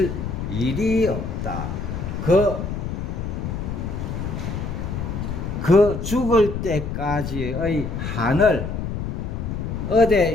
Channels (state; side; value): noise; left; rumble, 4 dB below the sound